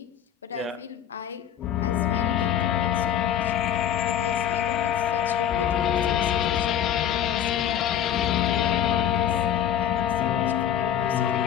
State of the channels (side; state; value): right; quieter; 10.1 dB